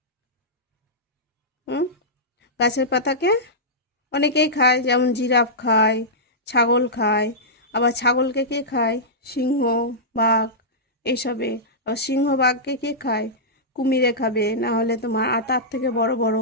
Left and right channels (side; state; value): both; normal; correlation -0.13